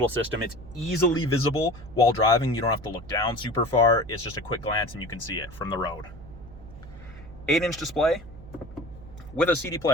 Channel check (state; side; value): noise; right; hum, 17 dB below the sound